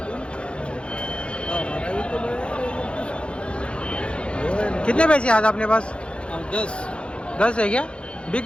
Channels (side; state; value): right; late; 0.058 ms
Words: कितने पैसे आज अपने पास? 10 10 है क्या? बिक